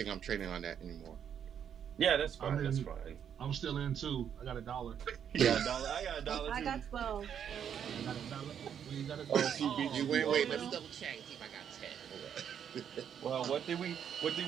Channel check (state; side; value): quieter; left; 8.6 dB